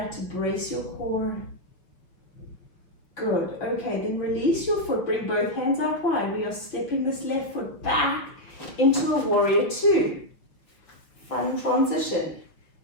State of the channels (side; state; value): right; late; 5.7 ms